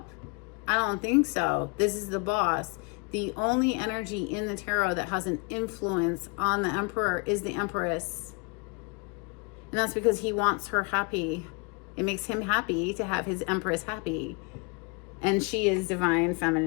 I don't think so. This is the boss. The only energy in the tarot that has an influence on the Emperor is the Empress. And that's because he wants her happy. It makes him happy to have his Empress happy. And she is divine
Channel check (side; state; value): right; quieter; 32.5 dB